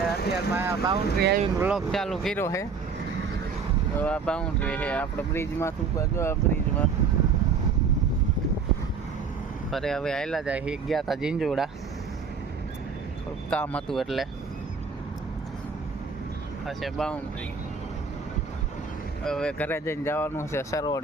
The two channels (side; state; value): left; quieter; 5.3 dB